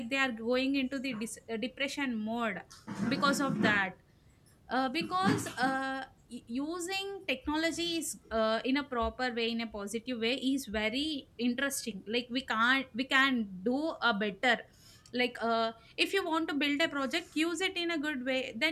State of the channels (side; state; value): both; identical; correlation 1.00